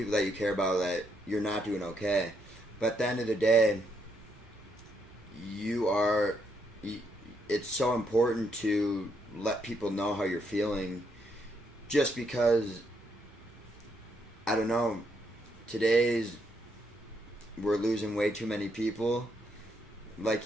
that you care about that you're not doing okay. But at the end of the day, it's so important to let people know how you're feeling, just because, I don't know, we're losing way too many people. Like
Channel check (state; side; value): normal; both; correlation 0.76